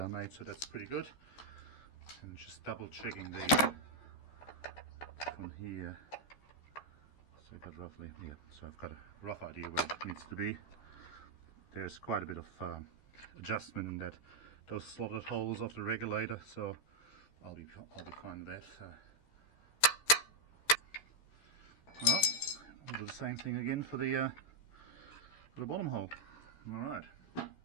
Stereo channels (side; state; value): right; late; 14 ms